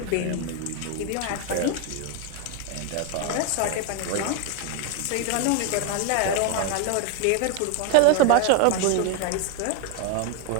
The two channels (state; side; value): different; both; correlation 0.01